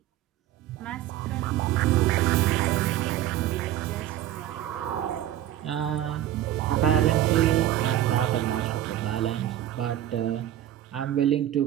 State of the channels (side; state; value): left; quieter; 12.6 dB